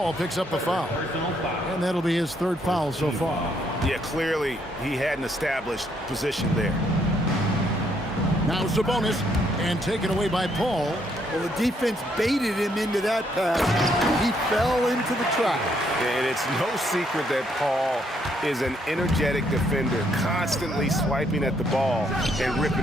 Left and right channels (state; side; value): normal; both; correlation 0.72